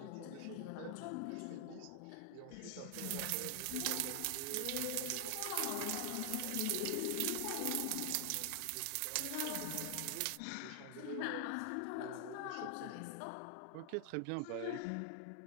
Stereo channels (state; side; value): different; both; correlation 0.00